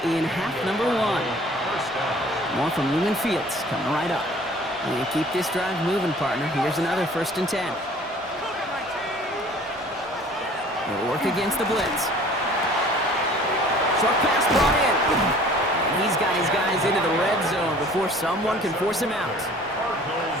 in half number 1. More from Lumen Fields coming right up. And keep this drive moving, partner. Here's another 1st and 10. They'll work against the blitz. Short pass brought in. And he's got his guys into the red zone before someone can force him out.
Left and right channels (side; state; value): both; normal; correlation 0.50